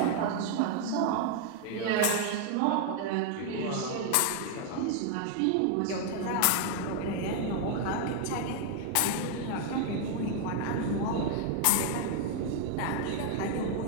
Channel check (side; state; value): both; different; correlation 0.00